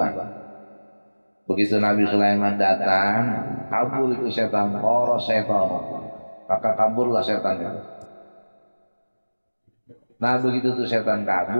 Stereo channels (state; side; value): inverted; both; correlation -1.00